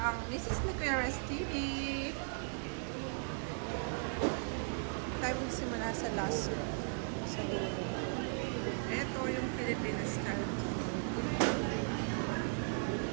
ang Mrs. Niqueras TV. Tayo magsimula sa last sa dulo. Ito yung Filipino style.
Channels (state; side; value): silent; left; 53 dB below the other